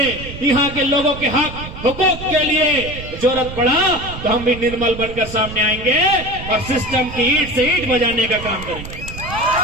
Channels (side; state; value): right; noise; rumble, 11 dB below the sound